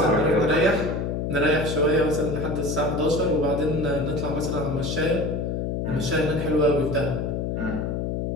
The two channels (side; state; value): left; noise; hum, 1 dB below the sound